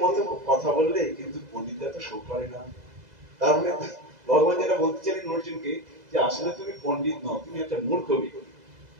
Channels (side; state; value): left; late; 2.0 ms